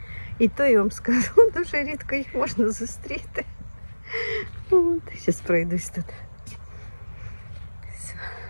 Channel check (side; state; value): both; inverted; correlation -1.00